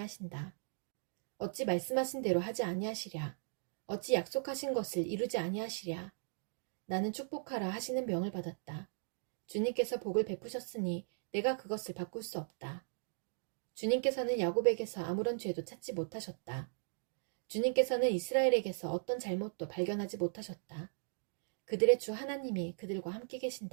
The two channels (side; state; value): left; silent; digital silence